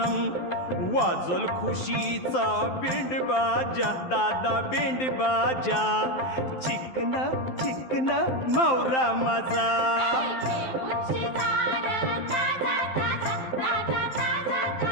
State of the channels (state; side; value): late; right; 12 ms